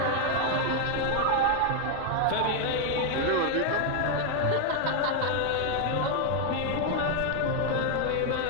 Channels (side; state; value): both; different; correlation 0.00